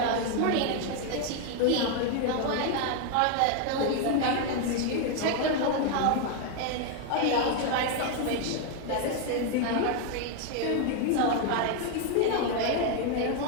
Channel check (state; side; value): different; both; correlation 0.01